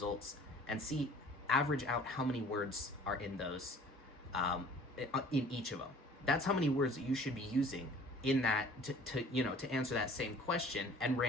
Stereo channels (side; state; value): both; normal; correlation 0.50